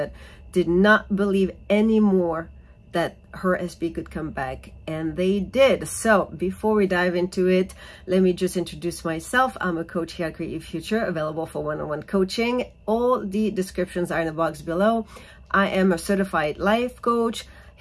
did not believe anymore that her SP could come back, and they did. So before we dive into it, let me just introduce myself. I'm a coach here at Create Your Future, available for one-on-one coaching. All the descriptions are in the box below. I am a certified life coach,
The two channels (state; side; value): identical; both; correlation 1.00